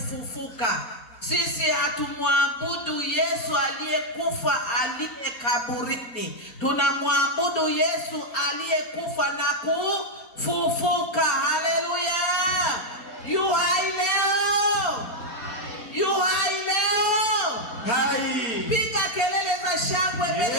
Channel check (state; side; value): late; right; 4.3 ms